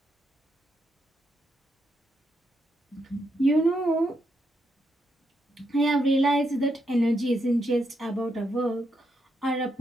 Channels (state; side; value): normal; both; correlation 0.80